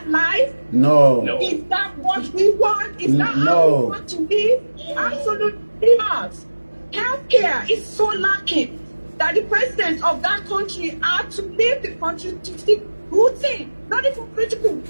life? No. Is that what we want? Is that how we want to live? Absolutely not. Healthcare is so lacking that the president of that country had to leave the country to seek routine, not even critical,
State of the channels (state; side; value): inverted; both; correlation -1.00